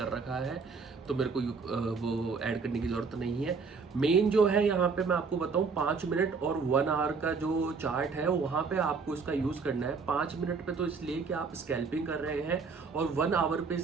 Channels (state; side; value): quieter; left; 4.9 dB